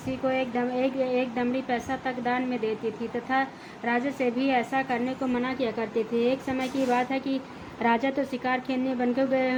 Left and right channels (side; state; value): both; identical; correlation 1.00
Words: को एक दमड़ी पैसा तक दान में देती थी तथा राजा से भी ऐसा करने को मना किया करती थी। एक समय की बात है कि राजा तो शिकार खेलने बनकर गए